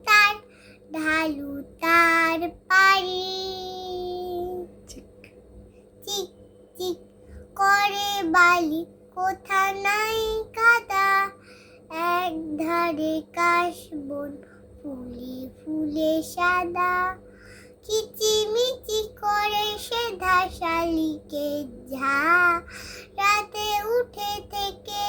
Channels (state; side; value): identical; both; correlation 1.00